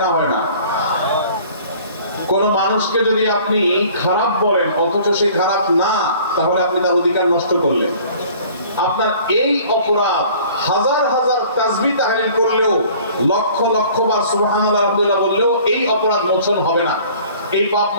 না? হয় না? কোন মানুষকে যদি আপনি খারাপ বলেন অথচ সে খারাপ না, তাহলে আপনি তার অধিকার নষ্ট করলেন। আপনার এই অপরাধ হাজার হাজার তাসবিহ তাহলিল করলেও, লক্ষ লক্ষ বার সুবহানাল্লাহ আলহামদুলিল্লাহ বললেও এই অপরাধ মোচন হবে না, এই পাপ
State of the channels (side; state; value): both; inverted; correlation -0.51